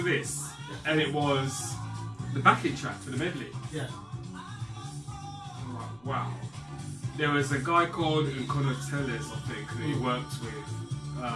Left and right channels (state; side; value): noise; left; rumble, 30 dB below the sound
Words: this. And it was the backing track for the medley. Yeah. I'm like, wow. There was a guy called Nkono Tellez, I think, that he worked